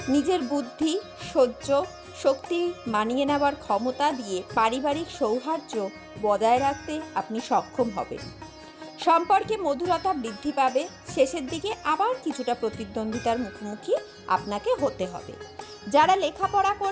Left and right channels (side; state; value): both; identical; correlation 1.00